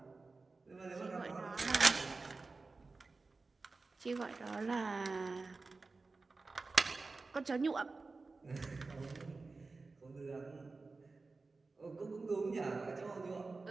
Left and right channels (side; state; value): left; quieter; 3.8 dB